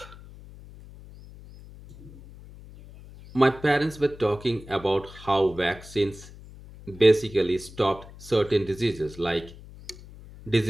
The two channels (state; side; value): noise; left; hum, 18 dB below the sound